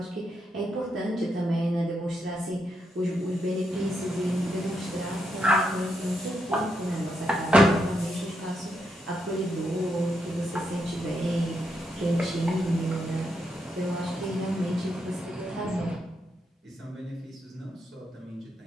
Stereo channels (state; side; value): normal; both; correlation 0.81